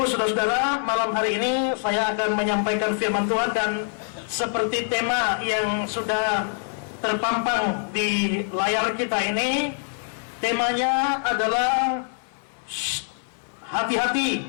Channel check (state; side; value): silent; right; 62 dB below the other